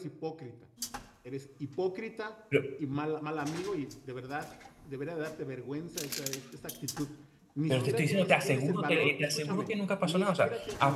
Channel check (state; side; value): identical; both; correlation 1.00